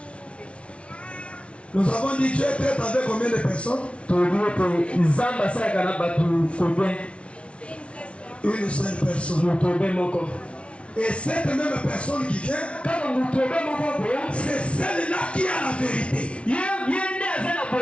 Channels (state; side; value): late; right; 0.060 ms